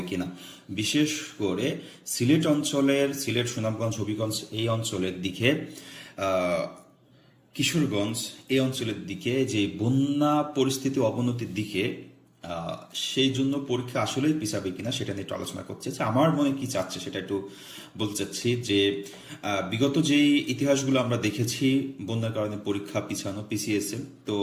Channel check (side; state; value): both; identical; correlation 1.00